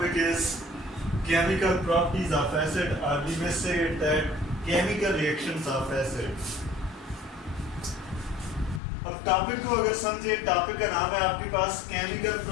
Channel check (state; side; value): drops out; right; at 8.8 s